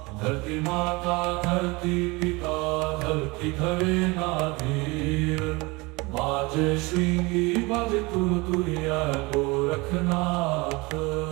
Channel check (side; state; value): left; quieter; 24.8 dB